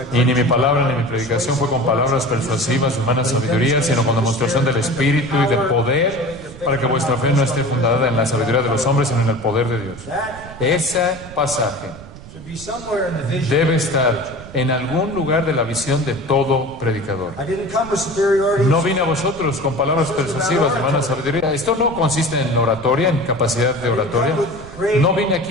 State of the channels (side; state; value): right; noise; rumble, 16 dB below the sound